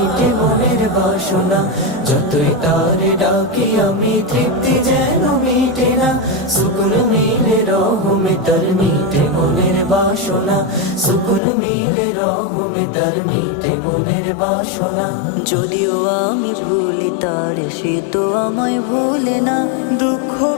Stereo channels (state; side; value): drops out; right; at 11.4 s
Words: মনের বাসনা। যতই তারে ডাকি আমি তৃপ্তি যেন মিটে না। সুকুন মিলে রহমে তার মিটে মনের বাসনা। সুকুন মিলে রহমে তার মিটে মনের বাসনা। যদিও আমি ভুলি তারে সে তো আমায় ভুলে না। দুঃখ